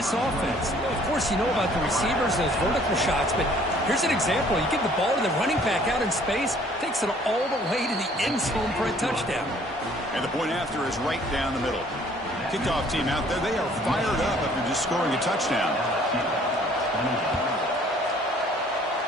offense? Well, of course, you know about the receivers, those vertical shots, but here's an example. You give the ball to the running back out in space, takes it all the way to the end zone for a touchdown. And the point after is right down the middle. Kickoff team out there, they are fired up after just scoring a touchdown.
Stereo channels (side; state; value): both; normal; correlation 0.57